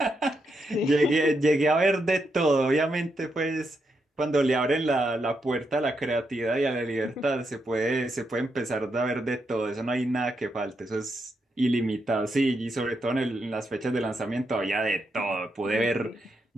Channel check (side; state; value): both; normal; correlation 0.82